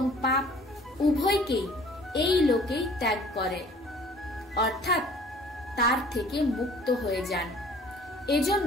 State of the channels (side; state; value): both; normal; correlation 0.52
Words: পাপ উভয়কেই এই লোকেই ত্যাগ করে, অর্থাৎ তার থেকে মুক্ত হয়ে যান।